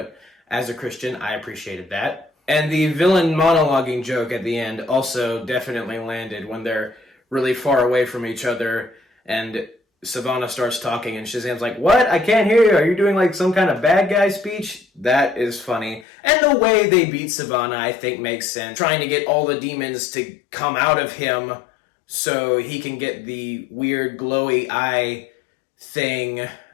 as a Christian, I appreciated that. And the villain monologuing joke at the end also definitely landed when they're really far away from each other and Savannah starts talking and Shazam's like, "What? I can't hear you. Are you doing like some kind of bad guy speech?" That is funny. And the way they beat Savannah, I think, makes sense. Trying to get all the demons to come out of him so he can get the weird glowy eye thing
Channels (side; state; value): right; drops out; at 16.1 s